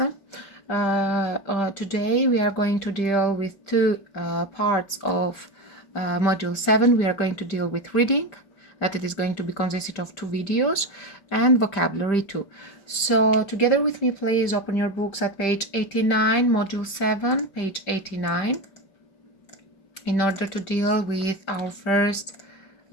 Today we are going to deal with two parts of module 7. We are going to deal with reading, that it is going to be consisted of two videos, and vocabulary too. So together with me, please open your books at page 89, module 7, page 89, in order to deal with our first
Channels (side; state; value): right; late; 5.1 ms